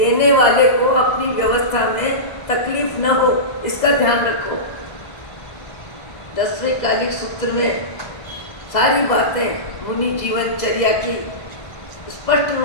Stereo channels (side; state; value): right; late; 2.0 ms